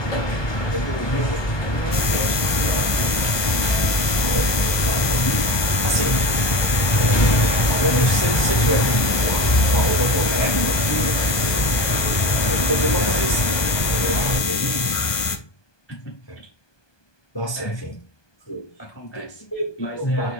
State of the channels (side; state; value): right; late; 1.2 ms